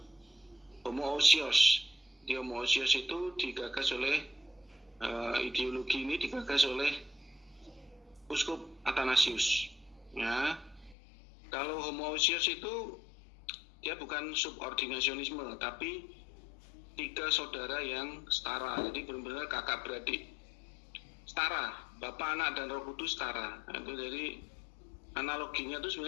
homoousios. Di homoousios itu digagas oleh ideologi ini digagas oleh Uskup Athanasius. Ya. Kalau homoousios itu dia bukan subordinasionisme, tapi 3 saudara yang setara. Jadi benar-benar kakak beradik setara, Bapa, Anak, dan Roh Kudus setara. Nah, itu jadi analoginya itu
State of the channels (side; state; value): right; drops out; at 11.0 s